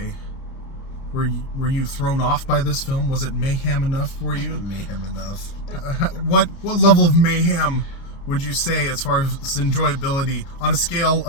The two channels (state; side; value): late; right; 29 ms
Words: were you thrown off by this film? Was it mayhem enough for you? Mayhem enough. What level of mayhem would you say as far as enjoyability on a scale